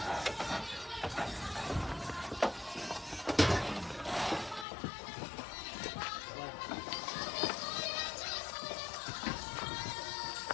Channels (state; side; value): drops out; right; at 4.7 s